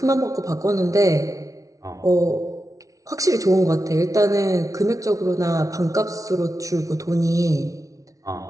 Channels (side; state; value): left; late; 0.17 ms